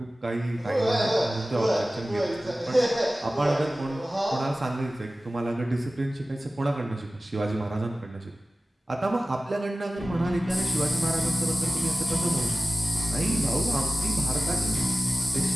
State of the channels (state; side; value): normal; both; correlation 0.97